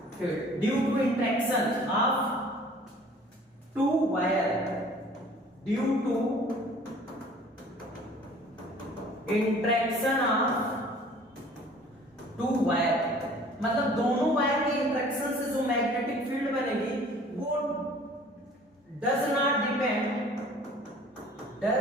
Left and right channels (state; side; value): normal; both; correlation 0.50